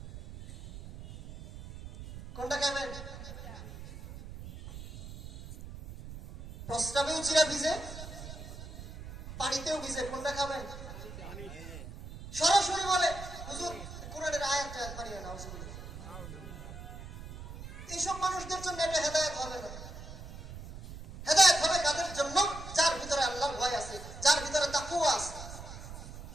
কোনটা কেমন? প্রস্তাবেও চিরা ভিজে, পানিতেও ভিজে, কোনটা খাবেন? সরাসরি বলে হুজুর কোরআনের আয়াতটা বানিয়ে নাও। এইসব মানুষদের জন্য এটা হেদায়েত হবে না। হেদায়েত হবে কাদের জন্য? যার ভিতরে আল্লাহর ভয় আছে, যার ভিতরে তাকওয়া আছে।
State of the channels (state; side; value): noise; right; rumble, 12 dB below the sound